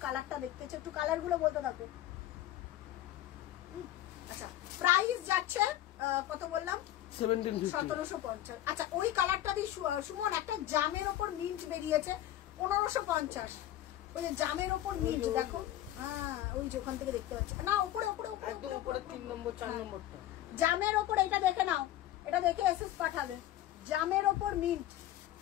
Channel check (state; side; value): quieter; right; 13.4 dB